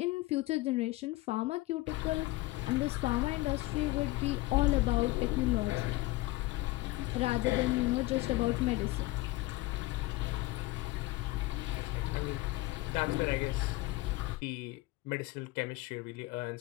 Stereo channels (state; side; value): quieter; right; 19.7 dB